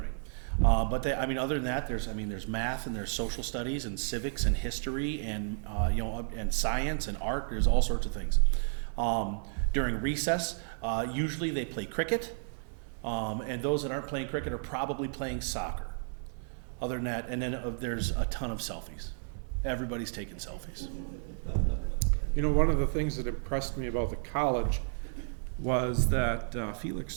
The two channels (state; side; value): silent; left; 56 dB below the other